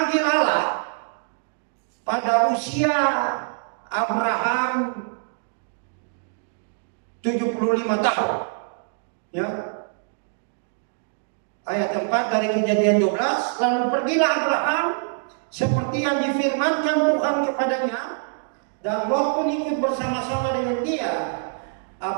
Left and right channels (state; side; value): silent; left; digital silence